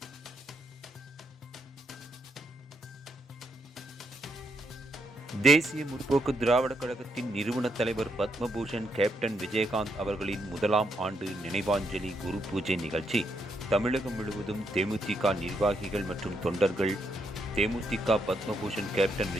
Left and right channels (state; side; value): normal; both; correlation 0.77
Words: தேசிய முற்போக்கு திராவிடக் கழகத்தின் நிறுவன தலைவர் பத்மபூஷன் கேப்டன் விஜயகாந்த் அவர்களின் முதலாம் ஆண்டு நினைவாஞ்சலி குரு பூஜை நிகழ்ச்சி தமிழகம் முழுவதும் தேமுதிக நிர்வாகிகள் மற்றும் தொண்டர்கள் தேமுதிக பத்மபூஷன் கேப்டன்